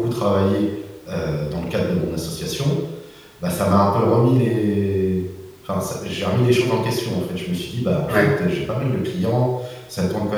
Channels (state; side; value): identical; both; correlation 1.00